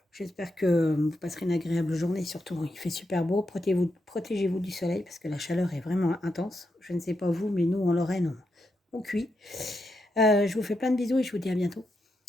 J'espère que vous passerez une agréable journée. Surtout, il fait super beau. Protégez-vous du soleil parce que la chaleur est vraiment intense. Je ne sais pas vous, mais nous, en Lorraine, on cuit. Je vous fais plein de bisous et je vous dis à bientôt.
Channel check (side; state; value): both; normal; correlation 0.84